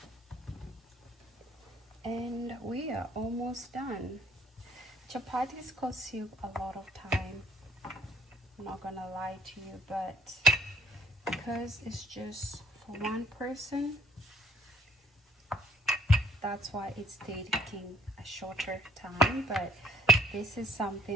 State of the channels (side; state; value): both; normal; correlation 0.60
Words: And we are almost done. Chapatis cost you a lot of time. I'm not gonna lie to you, but because it's just for one person, that's why it's taking a shorter time. But this is